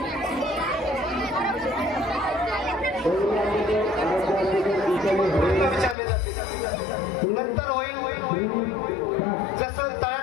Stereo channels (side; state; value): right; drops out; at 6.0 s